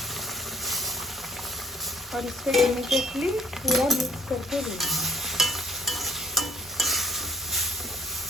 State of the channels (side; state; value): both; normal; correlation 0.62